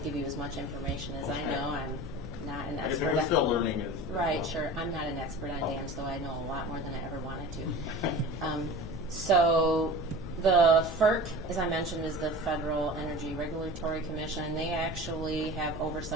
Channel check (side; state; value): left; noise; hum, 11 dB below the sound